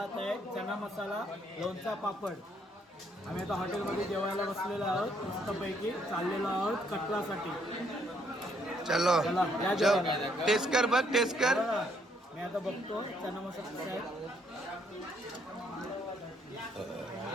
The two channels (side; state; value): both; normal; correlation 0.70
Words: आहे, चना मसाला, लोणचा, पापड. आम्ही आता हॉटेलमध्ये जेवायला बसलेलो आहोत. मस्तपैकी चाललेलो आहोत कटरासाठी. चलो चला, या जेवायला. टेस्ट कर बघ, टेस्ट कर. बघा, मी आता बघतो चना मसाला कसा आहे.